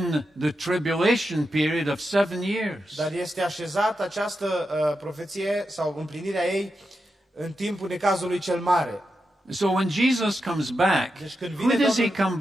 the tribulation period of 7 years. Dar este așezat această profeție sau împlinirea ei în timpul necazului cel mare. So when Jesus comes back, Deci când who vine does he Domnul, come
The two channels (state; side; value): normal; both; correlation 0.88